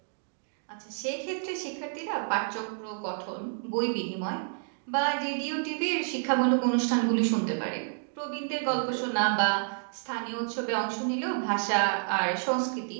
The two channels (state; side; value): silent; left; digital silence